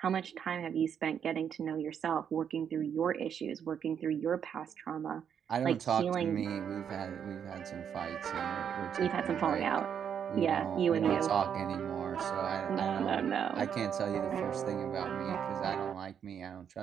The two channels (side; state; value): left; quieter; 8.1 dB